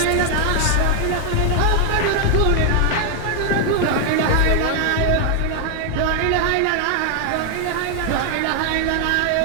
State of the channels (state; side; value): different; both; correlation 0.00